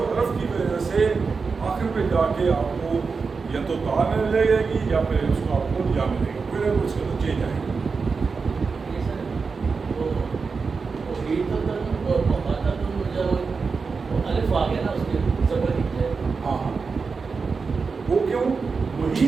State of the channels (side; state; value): left; quieter; 4.9 dB